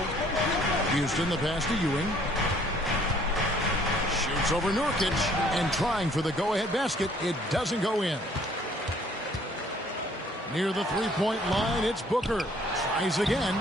Houston the pass to Ewing. Shoots over Nurkic and trying for the go-ahead basket. It doesn't go in. Near the three-point line, it's Booker. Tries again,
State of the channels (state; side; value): normal; both; correlation 0.60